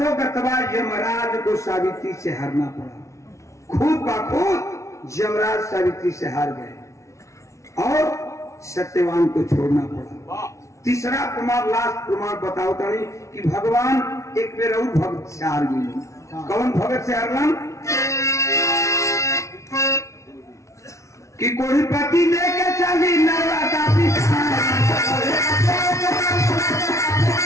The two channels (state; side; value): late; right; 0.14 ms